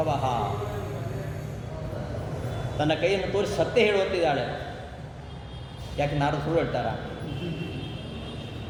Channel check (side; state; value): both; identical; correlation 1.00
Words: ತನ್ನ ಕೈಯನ್ನು ತೋರಿಸಿ ಸತ್ಯ ಹೇಳುವಂತಿದ್ದಾಳೆ. ಯಾಕೆ ನಾರದರು ಸುಳ್ಳು ಹೇಳ್ತಾರ?